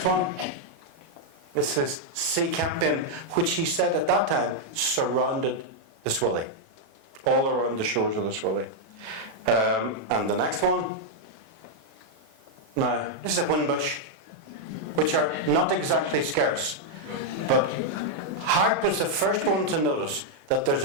one, this is sea campion, which he said at that time surrounded the Swilly, all around the shores of the Swilly. And the next one, now this is a whinbush, which are not exactly scarce, but Harte was the first one to notice that there's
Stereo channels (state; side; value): late; left; 37 ms